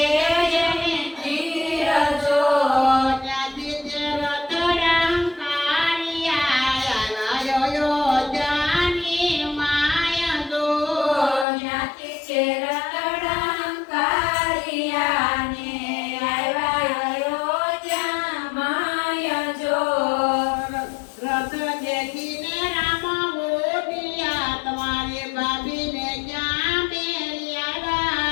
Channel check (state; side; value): drops out; right; at 11.5 s